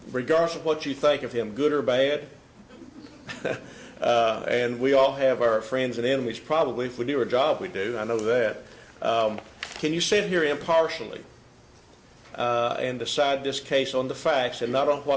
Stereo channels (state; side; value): identical; both; correlation 1.00